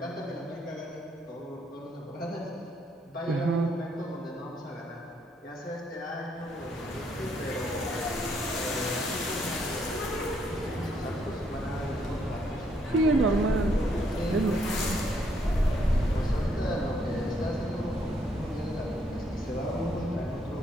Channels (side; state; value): both; normal; correlation 0.72